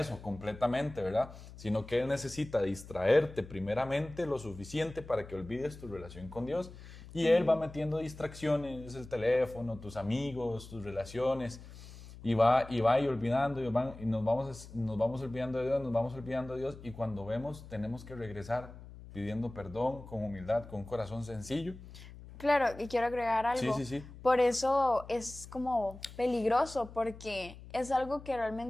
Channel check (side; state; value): left; noise; hum, 16 dB below the sound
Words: o completamente, ¿verdad? Sino que Él necesita distraerte primeramente lo suficiente para que olvides tu relación con Dios y Él va metiendo distracciones, el teléfono, tus amigos, tus relaciones y va y olvidando y nos vamos olvidando de Dios, nos vamos olvidando de Dios y cuando vemos tenemos que regresar pidiendo perdón con humildad, con un corazón sencillo. Claro, y quiero agregar algo. Sí. Por eso es como peligroso, porque es algo que